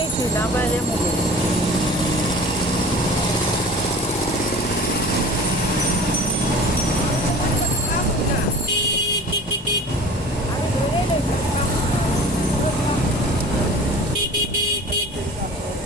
না পাই যে মুখে।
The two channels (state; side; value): normal; both; correlation 0.42